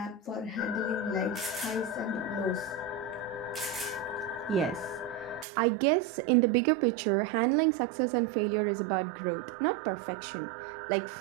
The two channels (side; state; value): left; drops out; at 5.5 s